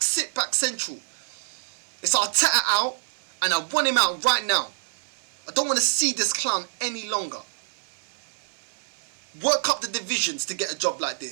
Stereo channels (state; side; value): silent; left; digital silence